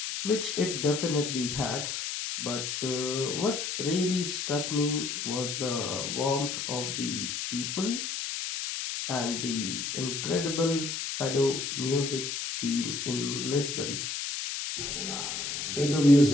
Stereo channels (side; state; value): left; noise; hiss, 3 dB below the sound